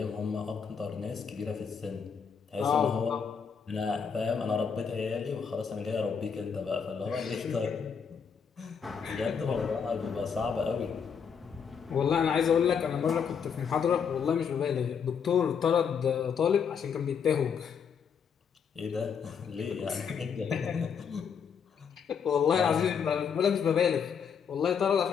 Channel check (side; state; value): right; quieter; 6.8 dB